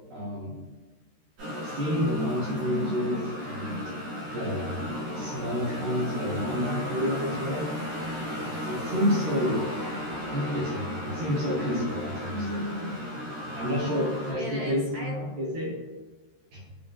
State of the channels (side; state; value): left; late; 13 ms